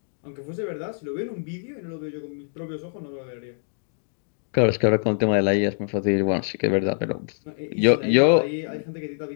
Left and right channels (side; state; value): right; silent; digital silence